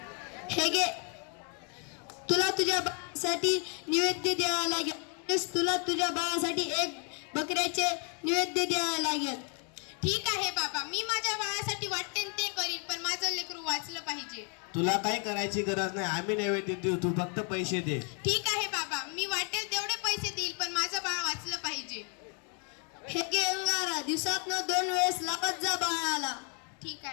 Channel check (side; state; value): right; quieter; 39.9 dB